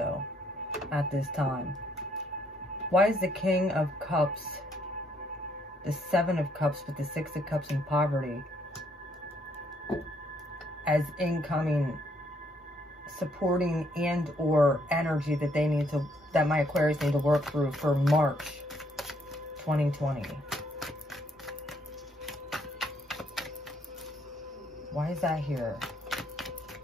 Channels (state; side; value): normal; both; correlation 0.70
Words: at this time. Why is the King of Cups, the Seven of Cups with the Six of Cups in poverty as incoming supporting and or energy that they need to, that my Aquarius need to work through for March 2020? Why is that here?